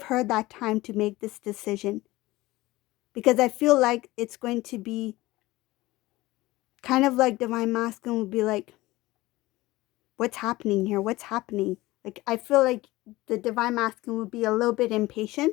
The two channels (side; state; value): right; quieter; 19.0 dB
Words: her that time to make this decision. Because I feel like it's going to be kind of like Divine Masculine will be like, what's happening here? What's happening? Like, I feel like the Divine Masculine will be a little bit